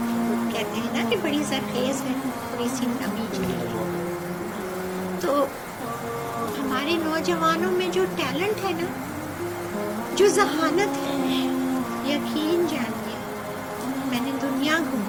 کہتے ہیں نا کہ بڑی زرخیز ہے، تھوڑی سی نمی چلی ہے. تو ہمارے نوجوانوں میں جو ٹیلنٹ ہے نا، جو ذہانت ہے، یقین جانیے میں نے دنیا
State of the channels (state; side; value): identical; both; correlation 1.00